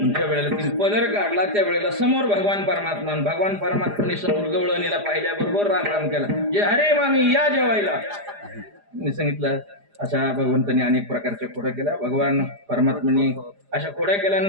ज्या वेळेला तिने पदर काढला त्या वेळेला समोर भगवान परमात्माने समोर गवळणीला पाहिल्याबरोबर राम राम केला. जे अरे मामी या जेवायला. मी सांगितलं अशा भगवंतांनी अनेक प्रकारच्या खोड्या केल्या. भगवान परमात्म्याने अशा खोड्या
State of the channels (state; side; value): late; left; 4.9 ms